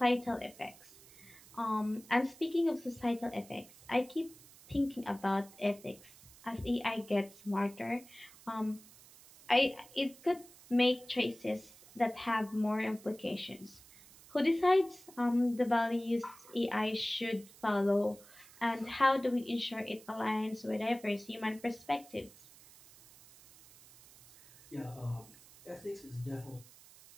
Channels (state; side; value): noise; right; hiss, 22 dB below the sound